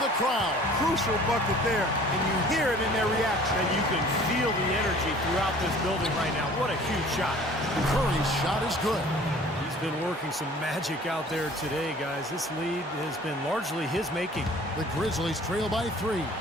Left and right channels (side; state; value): both; normal; correlation 0.49